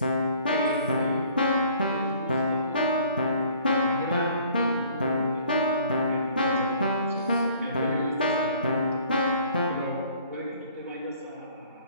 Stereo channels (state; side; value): inverted; both; correlation -0.55